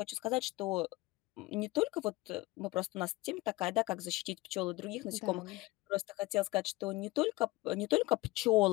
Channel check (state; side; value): quieter; right; 20.7 dB